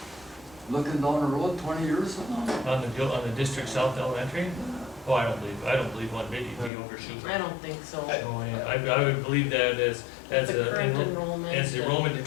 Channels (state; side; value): drops out; right; at 6.7 s